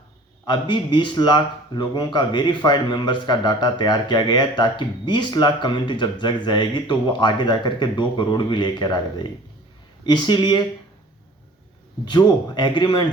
अभी 20 लाख लोगों का वेरीफाइड मेंबर्स का डाटा तैयार किया गया है, ताकि 20 लाख कम्युनिटी जब जग जाएगी तो वो आगे जाकर के 2 करोड़ भी लेकर आ जाएगी। इसीलिए जो एग्रीमेंट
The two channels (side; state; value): both; normal; correlation 0.47